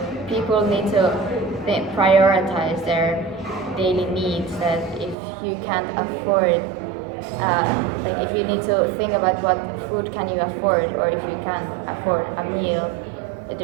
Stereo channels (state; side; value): drops out; left; at 5.2 s